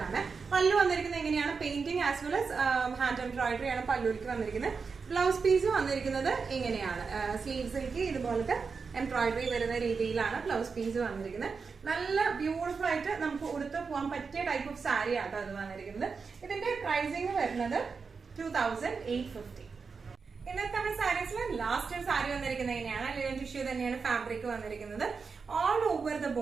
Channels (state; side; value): quieter; left; 5.1 dB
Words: പല്ലു വന്നിരിക്കുന്നത് എങ്ങനെയാണ്? Painting as well as hand embroidery ആണ് പല്ലുവിലേക്ക് വന്നിരിക്കുന്നത്. ബ്ലൗസ് പീസ് വന്നിരിക്കുന്നത് ഇങ്ങനെയാണ്. സ്ലീവ്സിലേക്ക് ഇതുപോലത്തെ എംബ്രോയിഡറി വരുന്ന രീതിയിലാണ് ബ്ലൗസ് പീസ് വന്നിരിക്കുന്നത്. നല്ല ബ്യൂട്ടിഫുൾ ആയിട്ട് നമുക്ക് ഉടുത്ത് പോകാൻ പറ്റിയ ടൈപ്പ് ഓഫ് സാരി ആട്ടോ അത് വന്നിരിക്കുന്നത്. ഇതിന്റെ പ്രൈസിങ് വരുന്നത് 2850. ഇന്നത്തെ നമ്മുടെ സാരീസിൽ ലാസ്റ്റ് ഒരു സാരി വന്നിരിക്കുന്നത് എങ്ങനെയാണ്? ലിനൻ ടിഷ്യൂ തന്നെയാണ് ഫാബ്രിക് വന്നിരിക്കുന്നത്. ഓൾ ഓവർ ദ